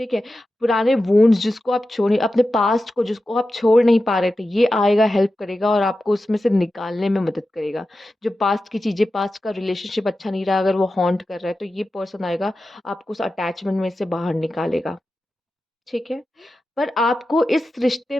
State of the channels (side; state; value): both; normal; correlation 0.92